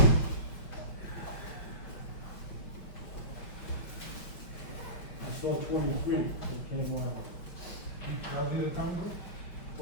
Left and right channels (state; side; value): late; right; 5.2 ms